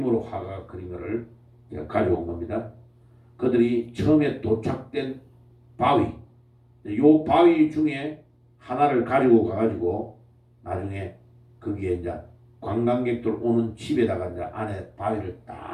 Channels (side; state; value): both; identical; correlation 1.00